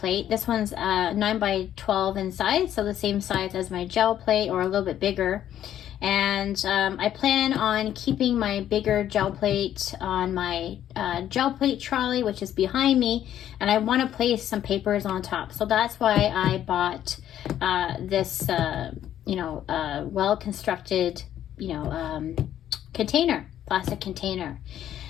This one's 9x12 in size, so the same size as my gel plate or a little bit bigger. And I plan on keeping my bigger gel plate on my gel plate trolley, which is behind me, and I want to place some papers on top. So that's why I bought this well-constructed container, plastic container.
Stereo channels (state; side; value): quieter; right; 11.1 dB